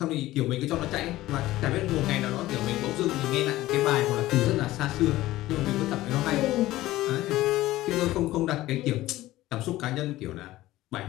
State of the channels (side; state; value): right; quieter; 16.4 dB